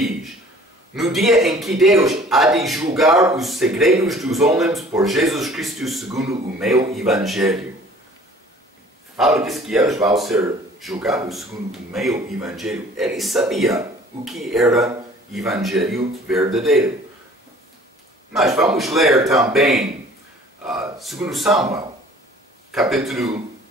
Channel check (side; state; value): both; normal; correlation 0.51